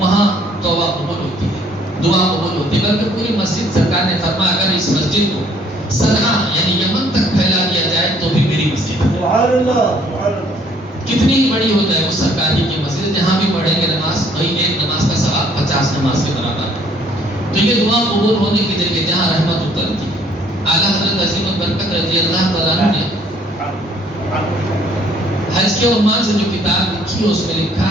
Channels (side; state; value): both; normal; correlation 0.61